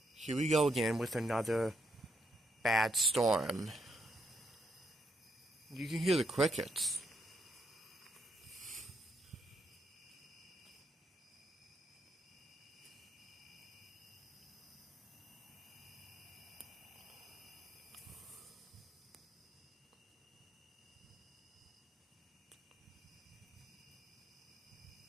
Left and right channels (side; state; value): both; normal; correlation 0.77